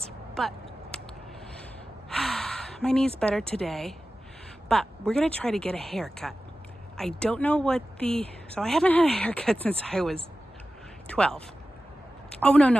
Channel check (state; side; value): normal; both; correlation 0.94